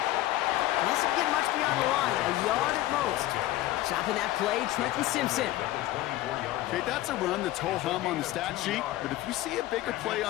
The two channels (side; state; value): right; quieter; 15.7 dB